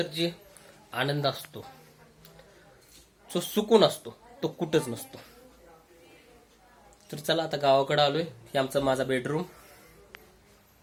जे आनंद असतो, जो सुकून असतो, तो कुठंच नसतो. तर चला आता गावाकडे आलोय. हे आमचा माझा बेडरूम.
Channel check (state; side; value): identical; both; correlation 1.00